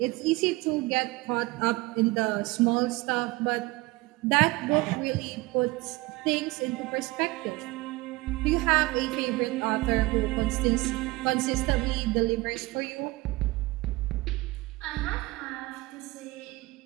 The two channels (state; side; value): quieter; left; 21.8 dB